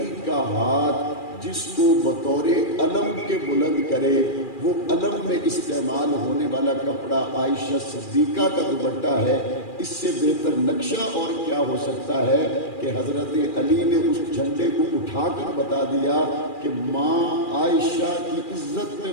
کا ہاتھ جس کو بطور علم کے بلند کرے، وہ علم میں استعمال ہونے والا کپڑا عائشہ صدیقہ کا دوپٹہ ہے۔ اس سے بہتر نقشہ اور کیا ہو سکتا ہے کہ حضرت علی نے اس جھنڈے کو اٹھا کر بتا دیا کہ ماں عائشہ کی عزت میں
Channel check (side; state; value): right; late; 2.4 ms